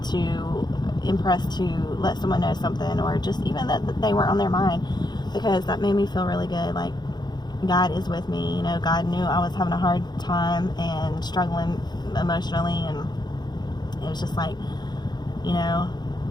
to, impressed to let someone know something, or just even that they were on their mind, because that made me feel really good. Like, God is with me. You know, God knew I was having a hard time and struggling emotionally, and it was just like, you know,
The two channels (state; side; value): late; right; 0.21 ms